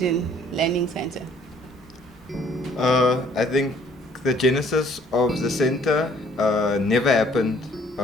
Learning Center? I think the genesis of the center never happened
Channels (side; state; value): both; normal; correlation 0.60